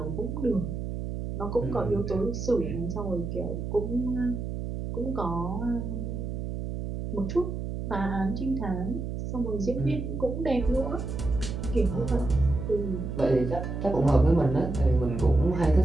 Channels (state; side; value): noise; right; hum, 5 dB below the sound